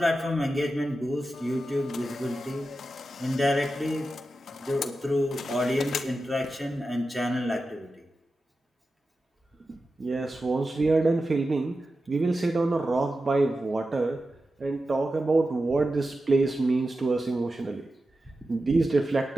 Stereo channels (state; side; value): normal; both; correlation 0.92